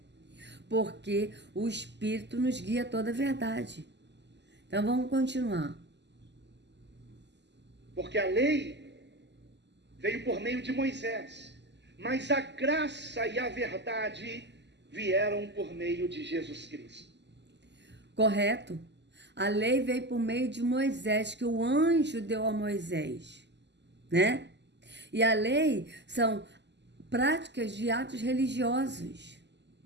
Porque o Espírito nos guia toda a verdade. Então vamos continuar. Porque a lei veio por meio de Moisés, mas a graça e a verdade vieram por meio de Jesus Cristo. Correto? A lei veio por meio de Moisés, que o anjo deu a Moisés, né? E a lei são práticas de atos religiosos.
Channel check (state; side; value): late; left; 0.51 ms